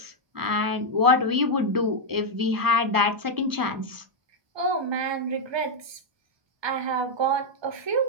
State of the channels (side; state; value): left; late; 1.2 ms